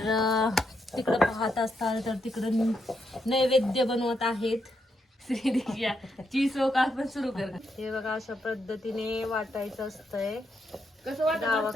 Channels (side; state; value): both; normal; correlation 0.80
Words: तिकडं पाहत असताल तर तिकडं नैवेद्य बनवत आहेत. आपण सुरू कर. हे बघा, अशा पद्धतीने वाटायचं असतंय.